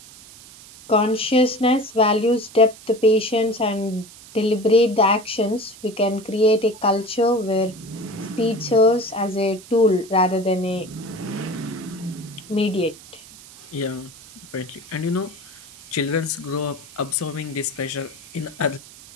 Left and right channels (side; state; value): right; noise; hiss, 20 dB below the sound